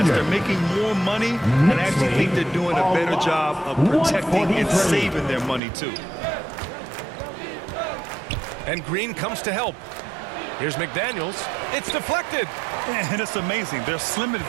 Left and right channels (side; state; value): left; drops out; at 5.6 s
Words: they're making more money, and I actually think they're doing a better job of protecting and saving their money, too. And Green comes to help. Here's McDaniels. It's deflected. And it's amazing. Their slim